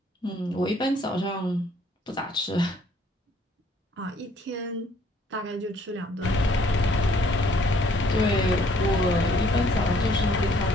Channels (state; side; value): normal; both; correlation 0.62